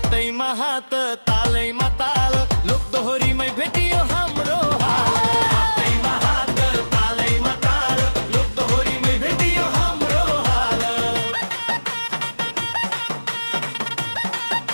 हात तालैमा ताल लोकदोहोरीमै भेटियो हाम्रो हाल हातैमा हात तालैमा ताल लोकदोहोरीमै भेटियो हाम्रो हाल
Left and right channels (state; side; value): inverted; both; correlation -1.00